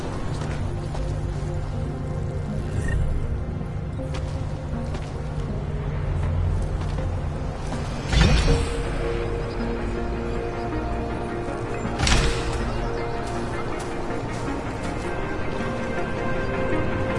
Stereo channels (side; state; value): both; identical; correlation 1.00